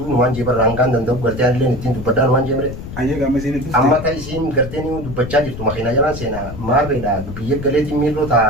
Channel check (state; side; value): noise; left; rumble, 10 dB below the sound